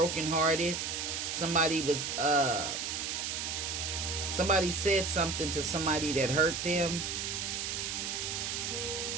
Somebody said something to somebody that hurt them.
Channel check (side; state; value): right; noise; hiss, 2 dB below the sound